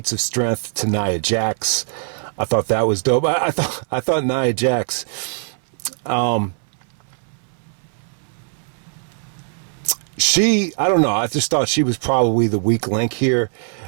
of strength to Nia Jax. I thought that was dope. I thought Nia Jax, I don't know. I just thought she was probably the weak link here.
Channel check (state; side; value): silent; left; 60 dB below the other